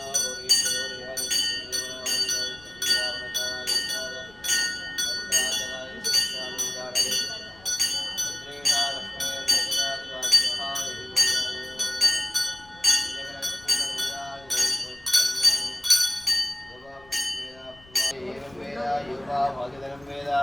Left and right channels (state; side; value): noise; left; rumble, 25 dB below the sound